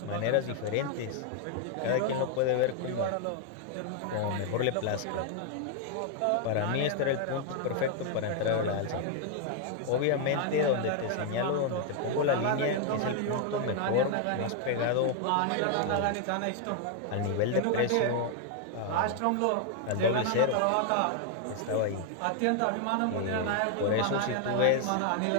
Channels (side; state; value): both; different; correlation 0.00